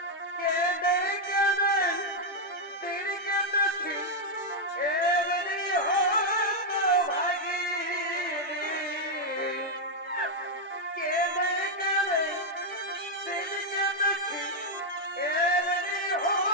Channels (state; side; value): normal; both; correlation -0.01